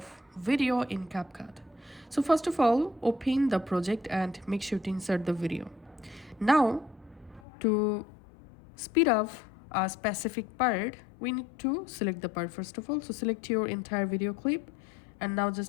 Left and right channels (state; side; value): drops out; right; at 7.4 s